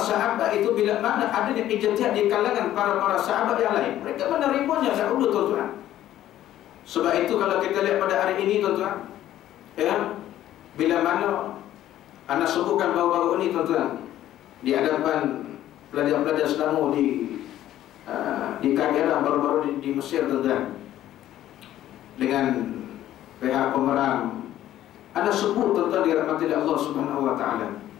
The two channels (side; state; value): right; quieter; 12.8 dB